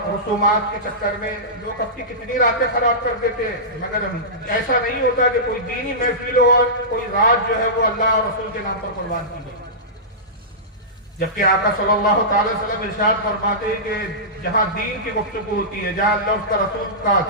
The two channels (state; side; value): normal; both; correlation -0.18